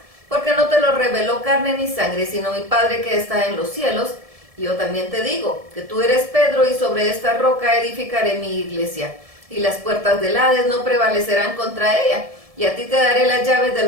porque no te lo reveló carne ni sangre, sino mi Padre que está en los cielos. Y yo también te digo que tú eres Pedro, y sobre esta roca edificaré mi iglesia, y las puertas del Hades no prevalecerán contra ella. Y a ti te daré las llaves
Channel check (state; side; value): late; left; 1.7 ms